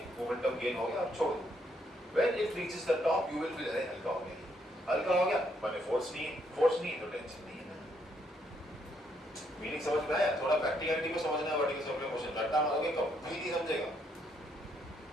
मोमेंटम गेन हो गया, अब छोड़ दो। When it reaches the top, you will feel अरे हल्का हो गया, हल्का हो गया, मैंने फोर्स नहीं तो टेंशन नहीं है ना। मीनिंग समझ में आया? थोड़ा प्रैक्टिकलिटी को समझना है, वर्टिकल सर्कुलर मोशन रट्टा मारोगे कभी नहीं समझेगा,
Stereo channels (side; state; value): both; normal; correlation 0.73